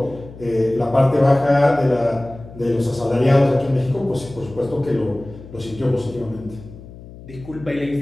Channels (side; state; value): left; noise; hum, 17 dB below the sound